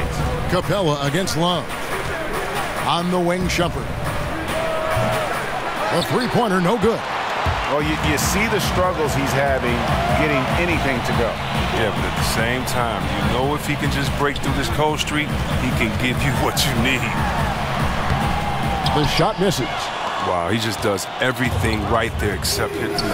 Capella against Love. On the wing, Shumpert. A three-pointer, no good. Well, you see the struggles he's having getting anything to go. Yeah, but at the same time, you know if he can just break through this cold streak, he can give you what you need. The shot misses. Wow, he just does everything right there except hit the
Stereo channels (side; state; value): both; identical; correlation 1.00